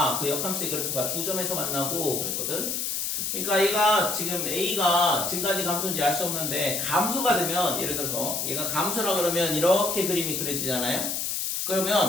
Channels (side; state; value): left; noise; hiss, 1 dB below the sound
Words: 그 역함수의 그래프가 두 점에서 만나고 그랬거든. 그러니까 얘가 지금 a가 증가인지 감소인지 알 수 없는데 감소가 되면 예를 들어서 얘가 감소라 그러면 이렇게 그림이 그려지잖아요.